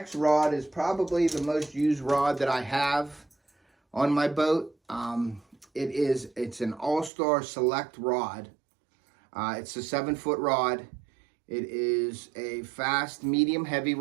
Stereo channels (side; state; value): left; drops out; at 7.1 s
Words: rod is probably the most used rod that I have on my boat. It's an All-Star Select rod. It's a 7-foot rod. It is a fast, medium, heavy